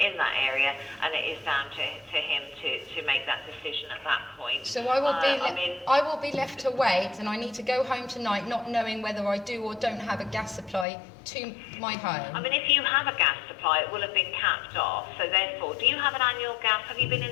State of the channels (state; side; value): drops out; right; at 10.9 s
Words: that area, and it is down to him to make that decision at that point. So I will be left to wait, and I need to go home tonight not knowing whether I do or don't have a gas supply to my home. I mean, if you have a gas supply, it will have been capped off. So therefore, do you have an annual gas? Have you been